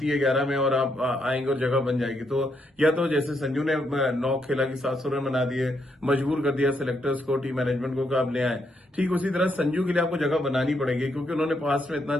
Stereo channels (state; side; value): normal; both; correlation 0.77